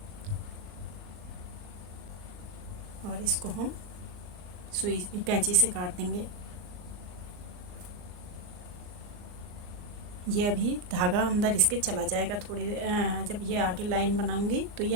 और इसको हम सुई कैंची से काट देंगे। ये अभी धागा अंदर इसके चला जाएगा, थोड़ी जब ये आगे लाइन बनाऊंगी तो ये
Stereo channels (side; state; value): left; late; 39 ms